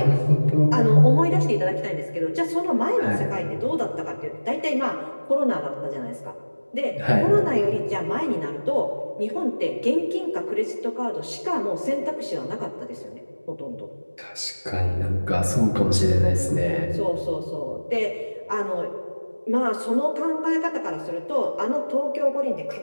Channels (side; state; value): both; inverted; correlation -1.00